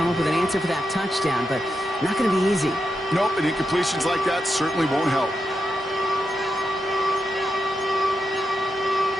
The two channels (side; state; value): both; normal; correlation 0.86